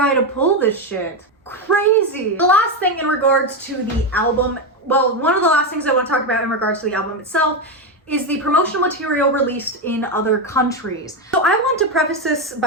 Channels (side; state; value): both; normal; correlation 0.10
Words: to pull this shit. Crazy. The last thing in regards to the album, well, one of the last things I want to talk about in regards to the album itself is the promotional material released in other countries. So I want to preface this